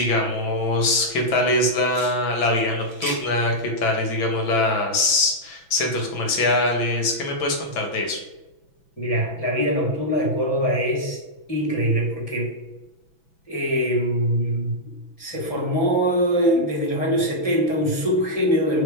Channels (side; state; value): right; late; 6.0 ms